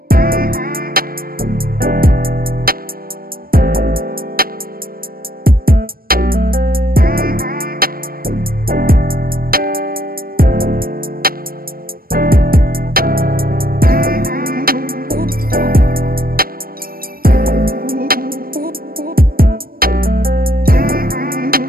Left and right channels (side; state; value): left; late; 0.43 ms